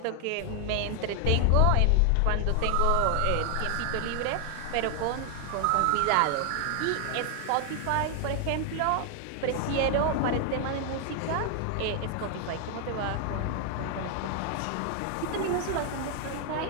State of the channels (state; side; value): different; both; correlation 0.00